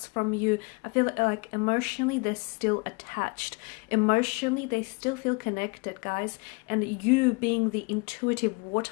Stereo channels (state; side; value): quieter; right; 30.2 dB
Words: from you. I feel like emotionally they're still attached. Emotionally they still feel connected, guys. And you, being the intuitive